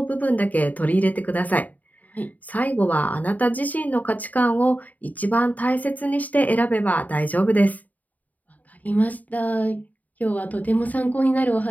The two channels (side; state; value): right; late; 0.076 ms